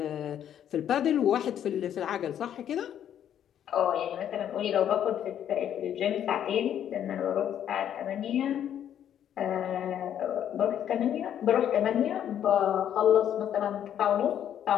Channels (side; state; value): right; quieter; 10.0 dB